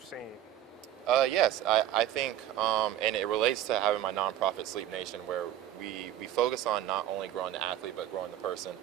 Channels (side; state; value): left; quieter; 11.9 dB